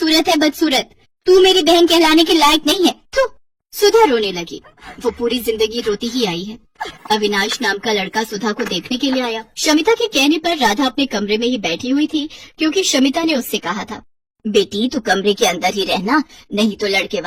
है बदसूरत, तू मेरी बहन कहलाने के लायक नहीं है। तू। सुधा रोने लगी। वो पूरी जिंदगी रोती ही आई है। अविनाश नाम का लड़का सुधा को देखने के लिए आया। शमिता के कहने पर राधा अपने कमरे में ही बैठी हुई थी, क्योंकि शमिता ने उससे कहा था, बेटी तू कमरे के अंदर ही रहना, नहीं तो लड़के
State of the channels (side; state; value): both; identical; correlation 1.00